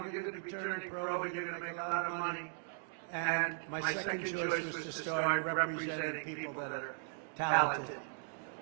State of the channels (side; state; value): left; silent; 53 dB below the other